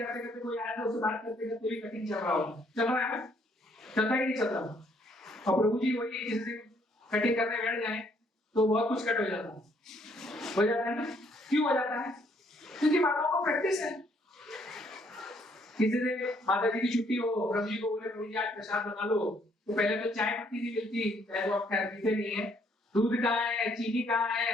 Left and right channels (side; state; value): both; normal; correlation 0.67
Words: करते कोई आया तो उससे बात करते करते भी कटिंग चल रहा होगा, चल रहा है ना, चलता ही नहीं चल रहा। और प्रभु जी वही किसी से कटिंग करने बैठ जाए तो बहुत कुछ कट हो जाता है। हो जाता है ना? क्यों हो जाता है? क्योंकि माताओं को प्रैक्टिस है। किसी दिन माता जी की छुट्टी हो, प्रभु जी को बोले प्रभु जी आज प्रसाद बना लो, तो पहले तो चाय पत्ती नहीं मिलती, चाहे तो आप खैर पीते नहीं है, दूध कहाँ है, चीनी कहाँ